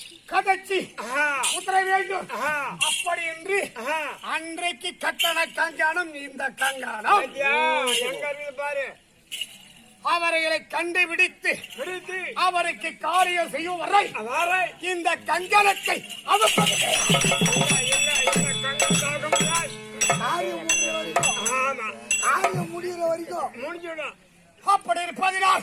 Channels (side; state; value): both; identical; correlation 1.00